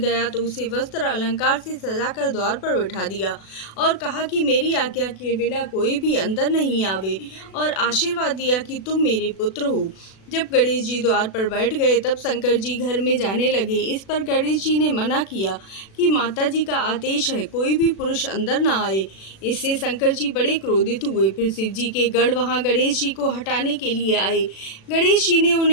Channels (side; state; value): right; late; 36 ms